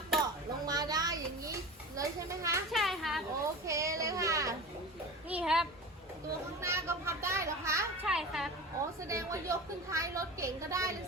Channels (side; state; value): both; normal; correlation 0.32